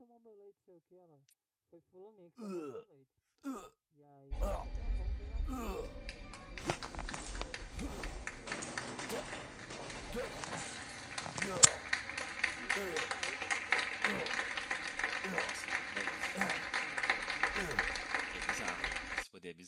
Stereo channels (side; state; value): both; identical; correlation 1.00